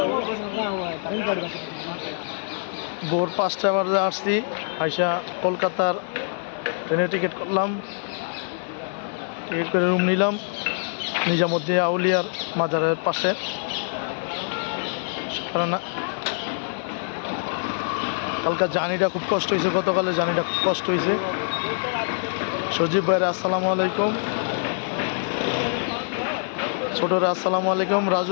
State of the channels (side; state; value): right; silent; 58 dB below the other